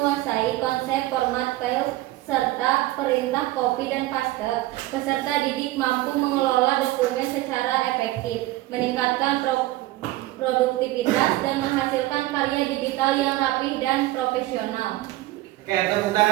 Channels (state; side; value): quieter; left; 17.3 dB